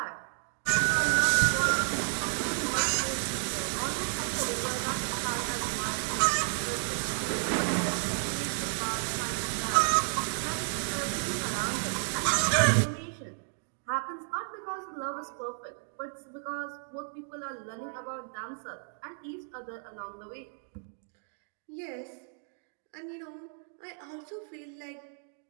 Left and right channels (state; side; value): silent; left; 57 dB below the other